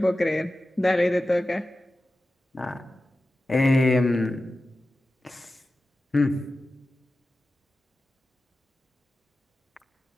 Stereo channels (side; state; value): both; normal; correlation 0.94